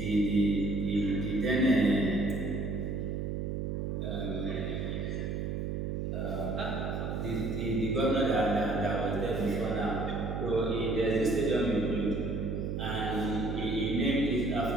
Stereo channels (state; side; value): noise; right; hum, 2 dB below the sound